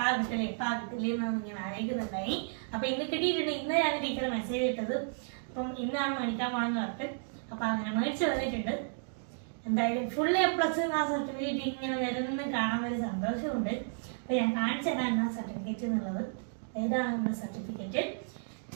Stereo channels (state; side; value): silent; left; digital silence